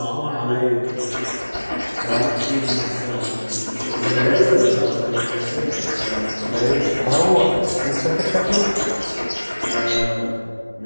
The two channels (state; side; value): inverted; both; correlation -1.00